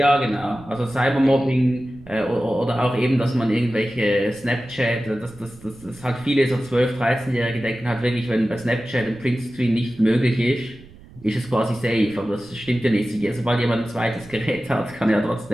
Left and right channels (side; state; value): right; noise; rumble, 21 dB below the sound